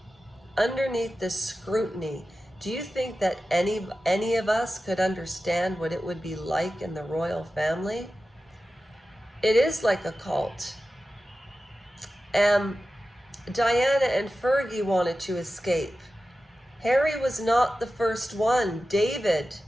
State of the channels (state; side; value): normal; both; correlation 0.94